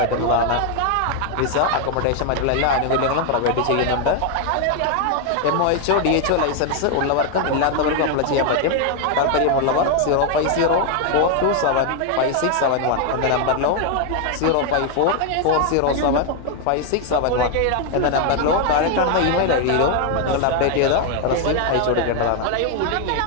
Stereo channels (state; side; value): different; both; correlation 0.00